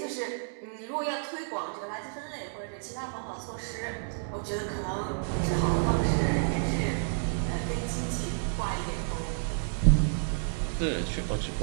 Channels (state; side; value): silent; left; digital silence